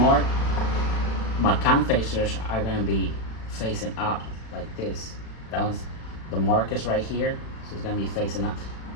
my cam facers are gonna be facing up like this. The mark is right here, so it's gonna be facing up.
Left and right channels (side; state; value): right; late; 36 ms